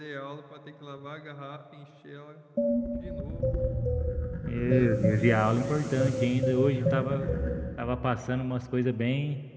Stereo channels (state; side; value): identical; both; correlation 1.00